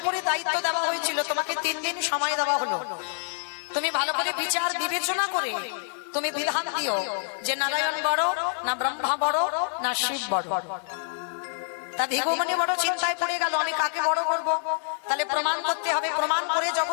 উপরে দায়িত্ব দেওয়া হয়েছিল, তোমাকে 3 দিন সময় দেওয়া হলো, তুমি ভালো করে বিচার বিবেচনা করে তুমি বিধান দিও যে নারায়ণ বড় না ব্রহ্মা বড় না শিব বড়। তা ভৃগুমণি বড় চিন্তায় পড়ে গেল, আমি কাকে বড় করব? তাহলে প্রমাণ করতে হবে, প্রমাণ করে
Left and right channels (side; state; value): right; silent; digital silence